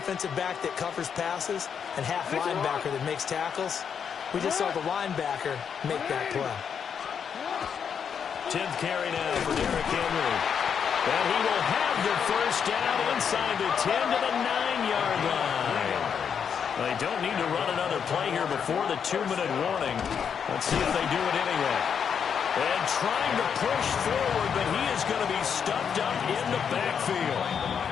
back that covers passes and half linebacker that makes tackles. We just saw the linebacker make that play. 10th carry now for Derrick Henry. And he will have the first down inside the 10 to the 9-yard line. They don't need to run another play here before the 2-minute warning. Let's see if they do it anyway. And trying to push forward, but he is going to be stuffed up in the backfield.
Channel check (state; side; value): quieter; right; 7.3 dB